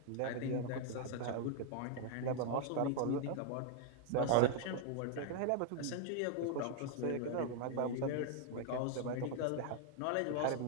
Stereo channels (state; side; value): different; both; correlation 0.00